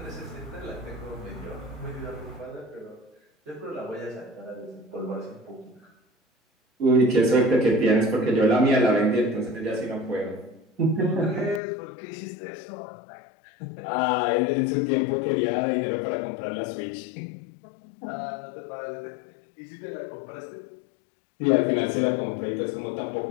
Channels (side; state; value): right; drops out; at 11.6 s